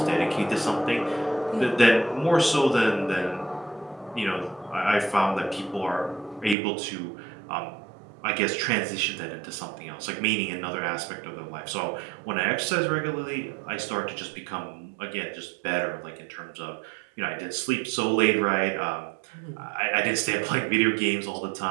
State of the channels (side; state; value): left; drops out; at 6.6 s